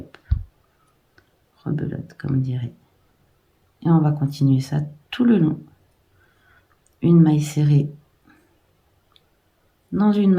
rebelote comme on dirait. Et on va continuer ça tout le long. Une maille serrée dans une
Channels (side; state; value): both; identical; correlation 1.00